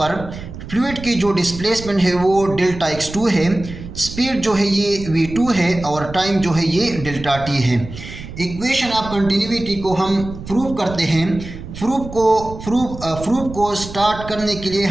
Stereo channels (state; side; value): noise; right; rumble, 12 dB below the sound